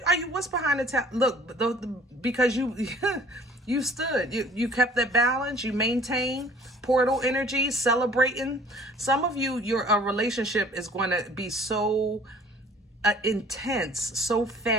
What's behind the tower? Look, because you you stood, you kept that balance, you maintained portal energy, celebrating. Some of you, your relationship is going to be so intense, so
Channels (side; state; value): both; normal; correlation 0.52